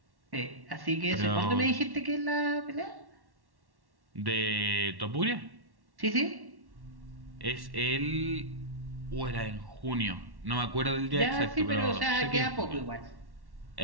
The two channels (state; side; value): late; left; 1.1 ms